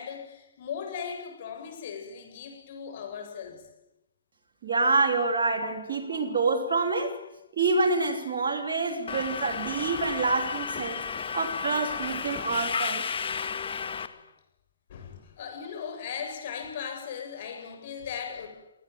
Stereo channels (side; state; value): both; inverted; correlation -0.61